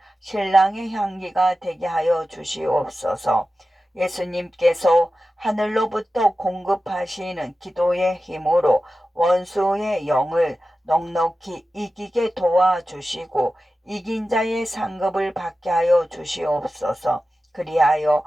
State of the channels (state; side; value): normal; both; correlation 0.94